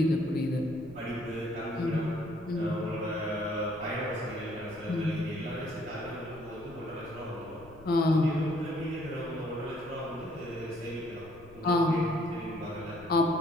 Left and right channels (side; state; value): left; noise; rumble, 20 dB below the sound